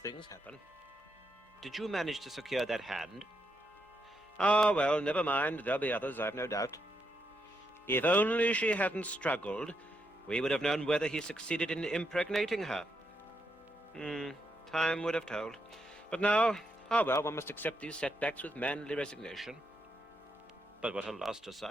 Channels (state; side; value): normal; both; correlation 0.80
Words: happen. Did you manage to secure that hand? Ah, well, never mind. There'll be others, I've no doubt. If only she hadn't struggled, we would have known whether he succeeded in impregnating her. Time would have told. But now, well, one must accept these setbacks with manly resignation. But what a loss to